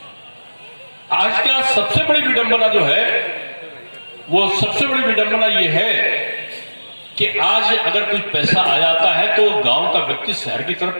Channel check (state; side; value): inverted; both; correlation -1.00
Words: आज का सबसे बड़ी विडंबना जो है वो सबसे बड़ी विडंबना ये है कि आज अगर कुछ पैसा आ जाता है तो गांव का व्यक्ति शहर की